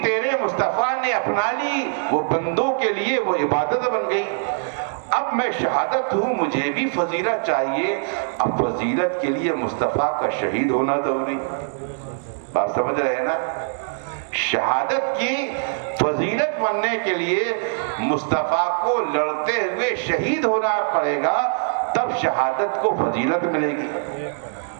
تیرے مصطفیٰ نے اپنا لی وہ بندوں کے لیے وہ عبادت بن گئی۔ اب میں شہادت ہوں، مجھے بھی فضیلت چاہیے، اب فضیلت کے لیے مصطفیٰ کا شہید ہونا ضروری۔ بات سمجھ رہے ہیں نا؟ شہادت کی فضیلت بننے کے لیے مصطفیٰ کو لڑتے ہوئے شہید ہونا پڑے گا، تب شہادت کو فضیلت ملے گی۔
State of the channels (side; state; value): left; silent; digital silence